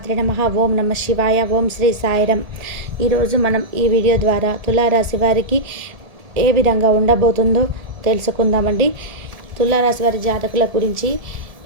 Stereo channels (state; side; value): late; left; 1.7 ms